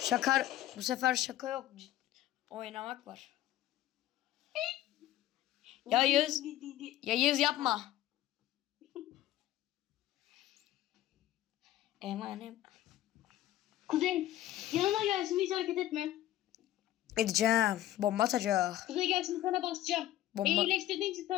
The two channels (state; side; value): quieter; right; 13.9 dB